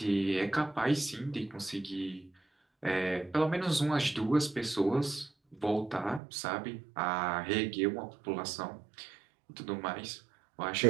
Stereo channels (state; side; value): drops out; left; at 6.2 s